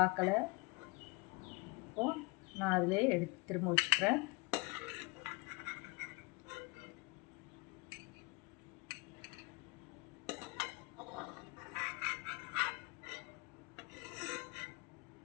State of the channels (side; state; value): right; quieter; 26.6 dB